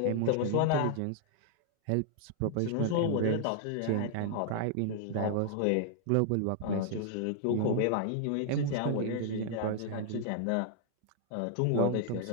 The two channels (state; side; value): different; both; correlation -0.01